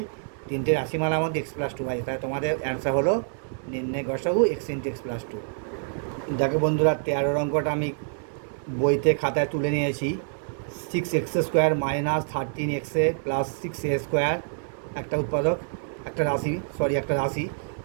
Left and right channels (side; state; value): left; silent; 60 dB below the other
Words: তিনটে রাশিমালার মধ্যে এক্স প্লাস 2 আছে, তাহলে তোমাদের অ্যান্সার হলো নির্ণয় গসাগু এক্স ইন্টু এক্স প্লাস 2। দেখো বন্ধুরা 13 অঙ্কটা আমি বইতে খাতায় তুলে নিয়েছি, 6x square minus 13x plus 6a square একটা উৎপাদক, একটা রাশি